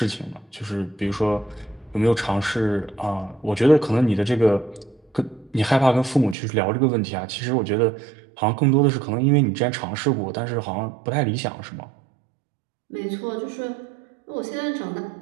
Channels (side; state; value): left; drops out; at 6.4 s